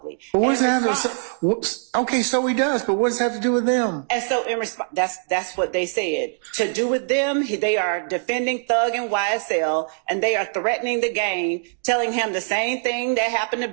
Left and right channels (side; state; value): left; silent; 64 dB below the other